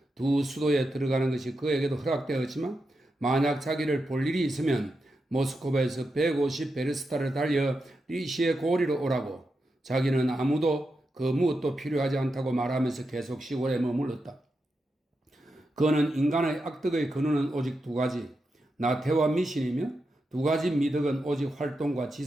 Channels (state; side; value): normal; both; correlation 0.87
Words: 두 수도에 들어가는 것이 그에게도 허락되었지만 만약 자기를 볼 일이 있으면 모스크바에서 150베르스타를 달려 리시의 고리로 오라고 자기는 아무도 그 무엇도 필요하지 않다고 말하면서 계속 시골에 머물렀다. 그는 인간의 악덕의 근원은 오직 두 가지, 나태와 미신이며 두 가지 미덕은 오직 활동과